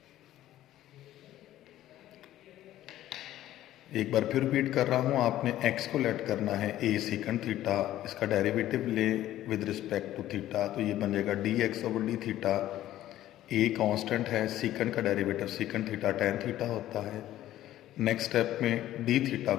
एक बार फिर रिपीट कर रहा हूँ, आपने x को लेट करना है a सीकेंड थीटा, इसका डेरिवेटिव ले विद रिस्पेक्ट टू थीटा तो ये बनेगा dx over D theta. a constant है, सीकेंड का derivative secant theta tan theta होता है। नेक्स्ट स्टेप में डी थीटा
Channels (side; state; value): right; quieter; 13.6 dB